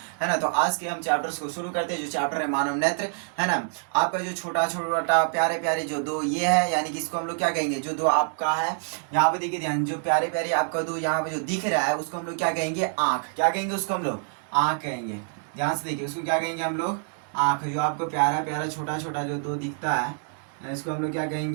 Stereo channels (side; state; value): left; silent; 60 dB below the other